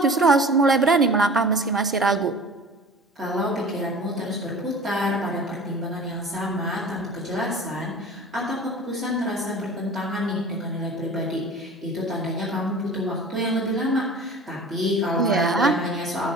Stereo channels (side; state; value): both; normal; correlation 0.41